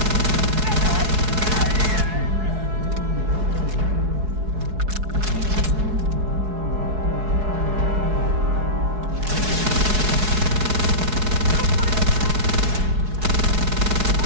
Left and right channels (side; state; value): left; late; 4.7 ms